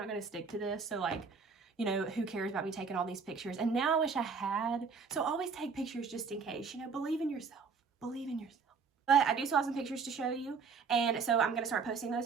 going to stick to this. So like, you know, who cares about me taking all these pictures? And now I wish I had. So always take pictures just in case, you know, believe in yourself. Believe in yourself. But I do still have some pictures to show you. And so I'm going to start posting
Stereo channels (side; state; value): left; quieter; 5.3 dB